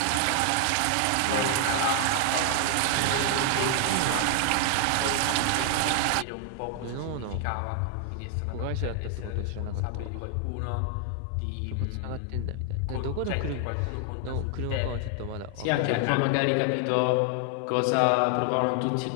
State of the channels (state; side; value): different; both; correlation 0.00